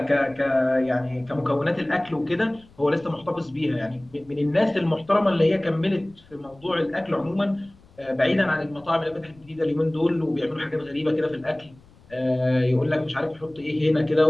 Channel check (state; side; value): noise; left; rumble, 27 dB below the sound